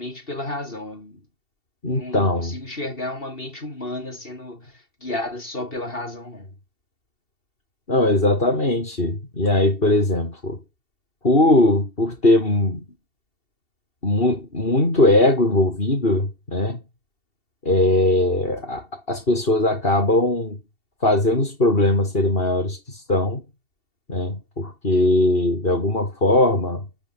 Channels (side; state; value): right; late; 2.7 ms